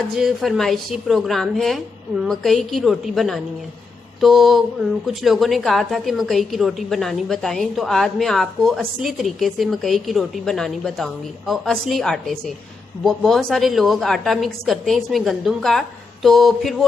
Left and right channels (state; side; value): quieter; right; 4.2 dB